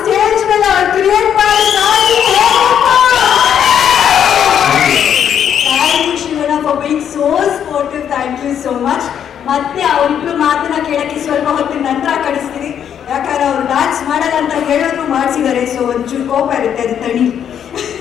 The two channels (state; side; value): quieter; right; 8.9 dB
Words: ಮೇಲೆ ಅವ್ರು ಕ್ರಿಯೇಟ್ ಮಾಡಿ thank you Shivanna for being so sportive. Thank you so much. ಮತ್ತೆ ಅವರಿಬ್ರು ಮಾತನ್ನ ಕೇಳಕ್ಕೆ ಸ್ವಲ್ಪ ಹೊತ್ತಿನ ನಂತರ ಕಳಿಸ್ತೀನಿ, ಯಾಕಂದ್ರೆ ಅವ್ರು ಡ್ಯಾನ್ಸ್ ಮಾಡಲ್ಲ ಅಂತ ಹೇಳೋದು ಮಾಡಿಸಿದ್ದಾರೆ. ಸೊ ಒಂಚೂರು ಕೋಪ ಇರುತ್ತೆ, ಅದು ತಡಿ.